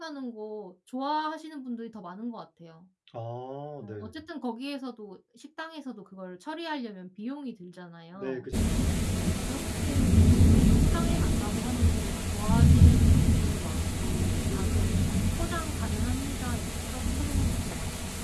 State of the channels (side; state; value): both; identical; correlation 1.00